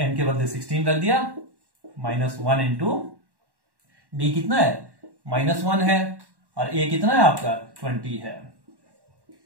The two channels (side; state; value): left; late; 1.1 ms